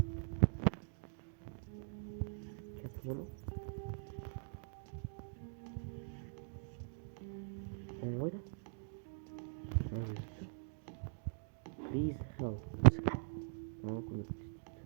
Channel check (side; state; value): left; silent; digital silence